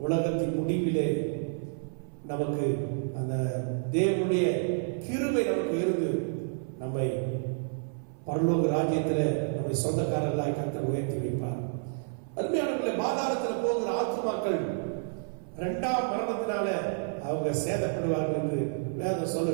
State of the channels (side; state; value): left; silent; 55 dB below the other